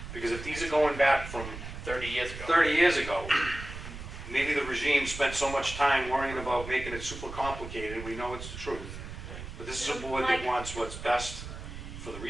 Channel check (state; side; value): noise; right; rumble, 10 dB below the sound